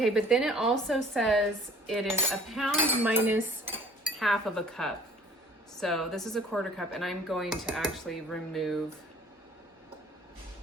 but then it also says it is a pound minus half of a cup. So this is a 1/4 cup, and I'm going to actually remove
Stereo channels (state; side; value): normal; both; correlation 0.52